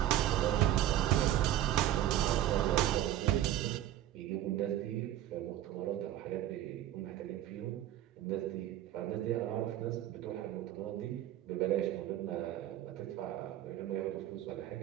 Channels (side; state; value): left; quieter; 12.6 dB